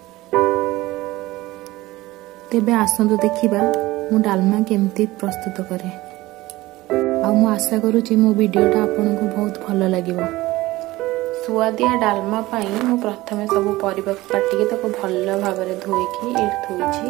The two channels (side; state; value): left; quieter; 18.6 dB